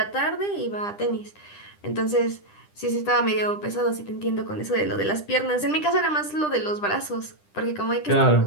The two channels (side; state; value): right; late; 10 ms